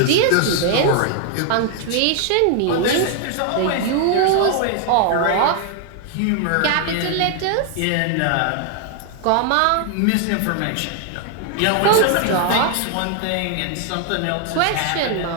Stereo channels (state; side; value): different; both; correlation 0.00